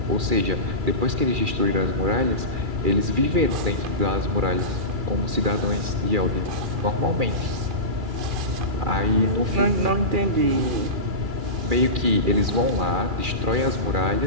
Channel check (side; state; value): left; late; 2.3 ms